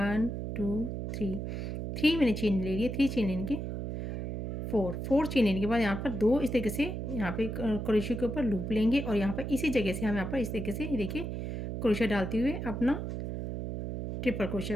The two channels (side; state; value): right; noise; hum, 4 dB below the sound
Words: 2 3 मैंने चेन ले ली है। 3 चेन लेने के 4 चेन लेने के बाद यहाँ पर 2 इस तरीके से यहाँ पे क्रोशिया के ऊपर लूप लेंगे और यहाँ पर इसी जगह से हम यहाँ पर इस तरीके से देखिए क्रोशिया डालते हुए अपना ट्रिपल